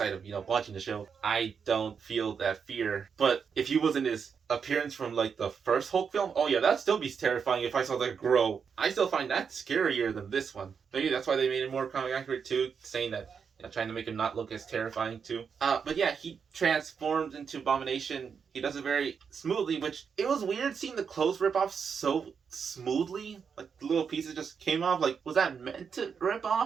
of, watching the show. I don't feel that fear. But if he wasn't his appearance from the first Hulk film, oh yeah, that'd still be terrifying if I saw that grow. I still find that scarier than this one. Maybe that's why they made it more comic accurate too, saying that, trying to make him not look as terrifying too. But yeah, he transforms into Abomination. He does it very smoothly, which it was weird seeing the clothes rip off so smoothly. Like, the little pieces just came off. Like, was that meant to rip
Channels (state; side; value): quieter; left; 6.4 dB